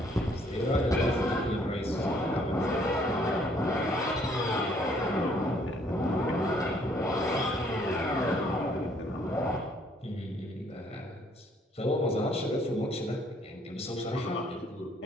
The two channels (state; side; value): normal; both; correlation 0.64